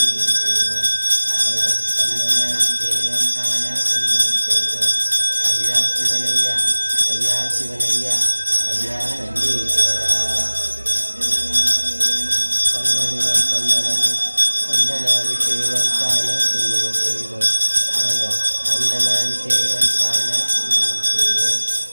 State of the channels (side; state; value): both; inverted; correlation -1.00